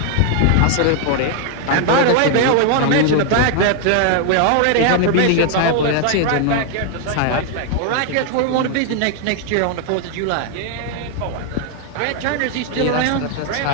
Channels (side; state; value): both; different; correlation 0.00